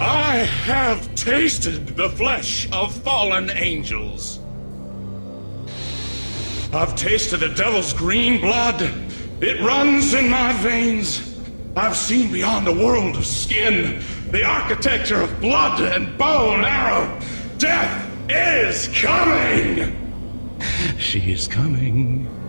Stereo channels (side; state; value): both; inverted; correlation -1.00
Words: I have tasted the flesh of fallen angels. I've tasted the devil's green blood. It runs in my veins. I've seen beyond the world of skin, the architecture of blood and bow and arrow. Death is coming! She is coming,